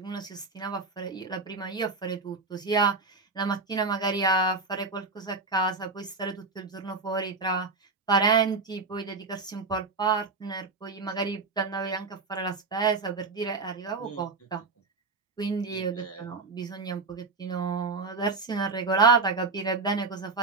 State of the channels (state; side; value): quieter; left; 4.0 dB